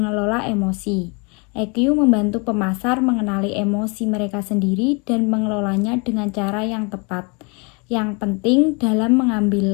emosi. EQ membantu pemasar mengenali emosi mereka sendiri dan mengelolanya dengan cara yang tepat. Yang penting dalam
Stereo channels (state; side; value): quieter; right; 31.8 dB